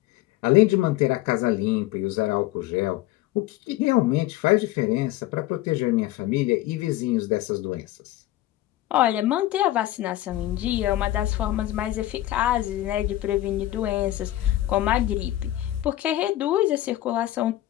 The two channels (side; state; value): right; quieter; 15.2 dB